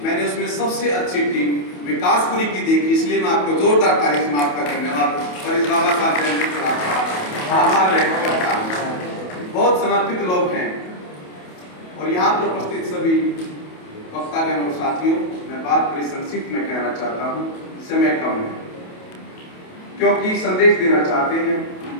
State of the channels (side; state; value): right; late; 28 ms